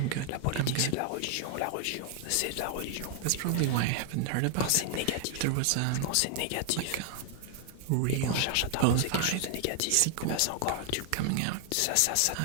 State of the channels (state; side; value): different; both; correlation 0.00